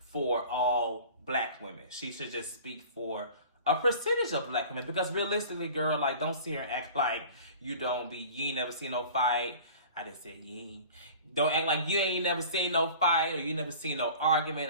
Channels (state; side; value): inverted; both; correlation -0.42